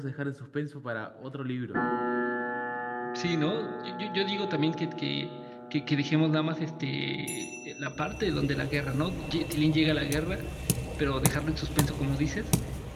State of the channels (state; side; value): identical; both; correlation 1.00